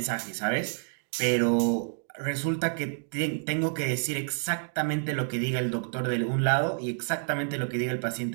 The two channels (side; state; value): left; silent; 59 dB below the other